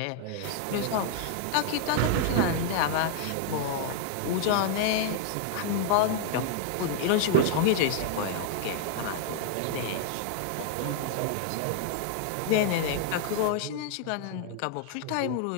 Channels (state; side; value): different; both; correlation -0.01